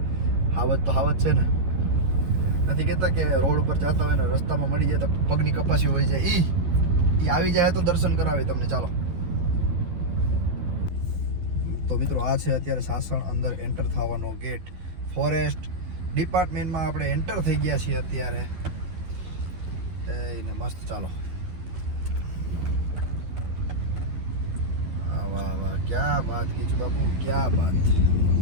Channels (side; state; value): left; late; 11 ms